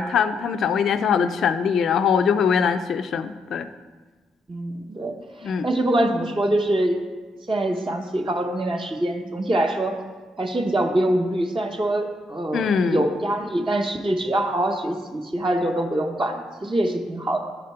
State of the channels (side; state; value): both; normal; correlation 0.78